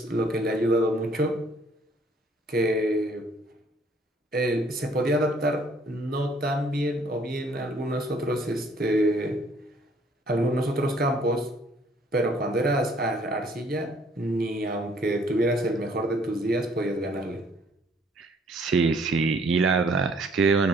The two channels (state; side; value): normal; both; correlation 0.61